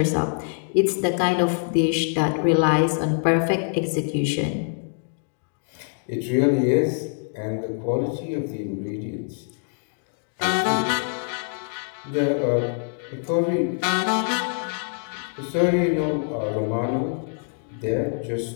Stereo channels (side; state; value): right; silent; digital silence